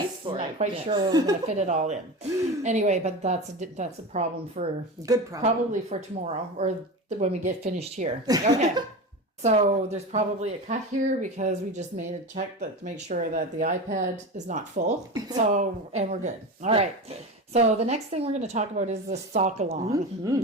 for it. I'm not quite sure we're going to fit it all in. Anyway, but that's a problem Good problem. Probably for tomorrow or when we get finished here. Okay. So there's probably a cut here because we just made a check to make sure that the iPad is not full. So, and we're good. All right. So the next thing we're going to talk about is the sock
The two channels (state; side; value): normal; both; correlation 0.26